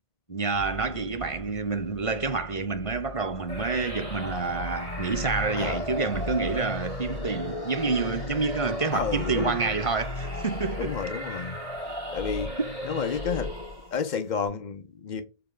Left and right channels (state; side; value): late; right; 1.5 ms